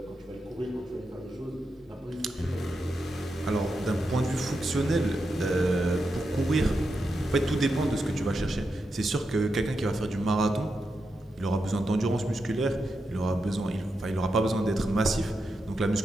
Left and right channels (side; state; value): both; normal; correlation 0.87